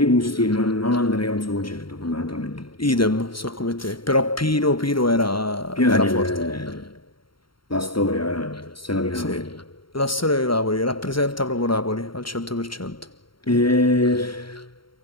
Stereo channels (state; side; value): late; right; 0.73 ms